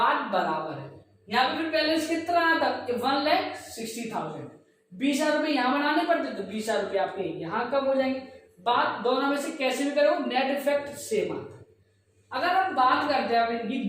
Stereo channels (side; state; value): both; identical; correlation 1.00